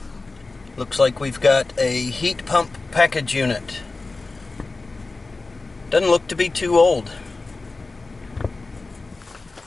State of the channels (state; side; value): quieter; right; 3.6 dB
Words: Looks like we've got a heat pump package unit. Doesn't look to be too old.